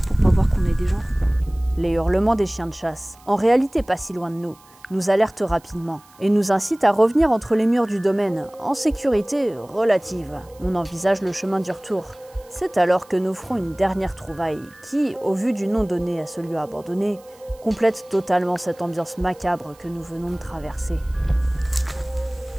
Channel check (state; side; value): noise; right; hiss, 28 dB below the sound